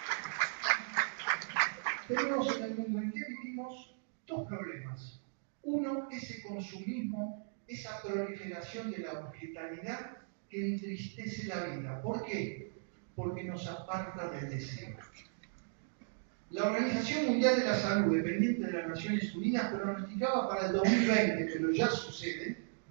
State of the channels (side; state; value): left; silent; digital silence